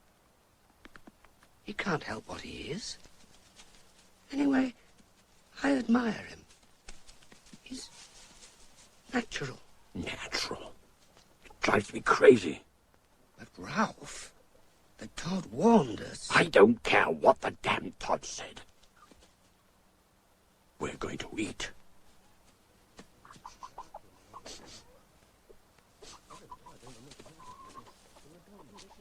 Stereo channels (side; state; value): both; identical; correlation 1.00